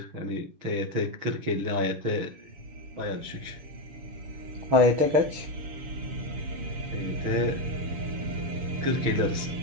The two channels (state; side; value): late; left; 6.3 ms